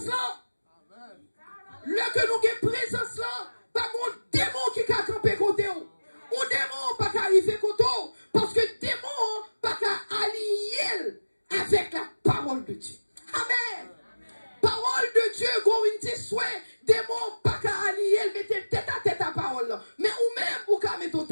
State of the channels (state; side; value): inverted; both; correlation -1.00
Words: là. Le que nous avons présence là, pas mon démon qui a campé côté ou. Ou démon pas qu'à arriver côté ou. Parce que démon pas qu'à allier avec la parole de Dieu. Amen. Parole de Dieu, go une souhait, démon pas qu'à allier, mettez tête à tête à parole là. Mais ou même ou qu'à mettre